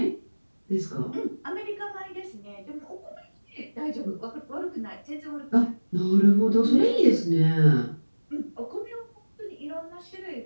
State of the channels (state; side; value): inverted; both; correlation -1.00